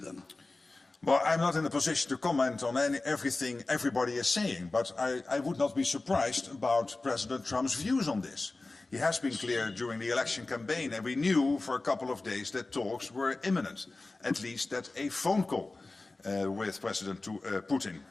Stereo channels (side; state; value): right; quieter; 3.3 dB